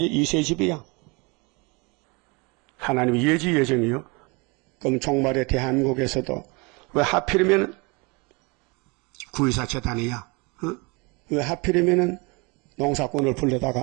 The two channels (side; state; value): left; quieter; 28.5 dB